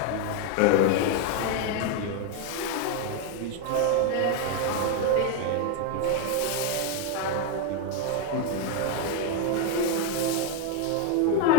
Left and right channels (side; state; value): both; different; correlation 0.02